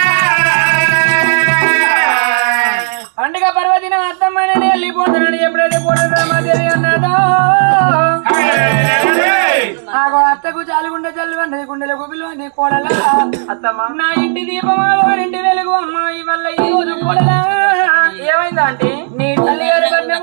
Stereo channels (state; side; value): silent; left; digital silence